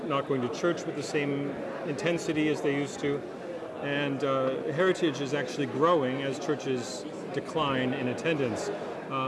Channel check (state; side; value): identical; both; correlation 1.00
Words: not going to church with the same intensity as they used to, and heritage is actually growing as churches decline in attendance.